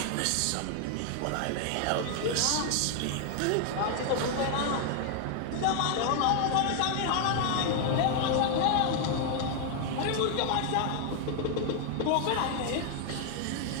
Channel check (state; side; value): different; both; correlation 0.00